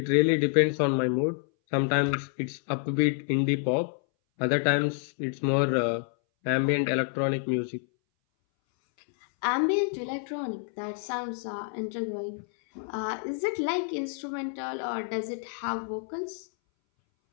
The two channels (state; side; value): silent; right; 59 dB below the other